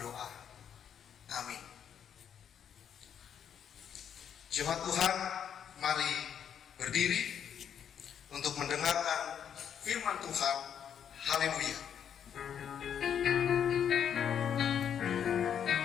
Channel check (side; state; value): right; quieter; 8.5 dB